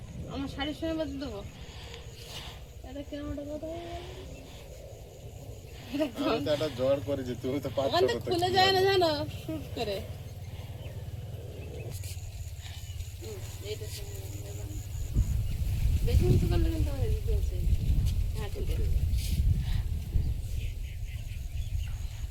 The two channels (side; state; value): both; identical; correlation 1.00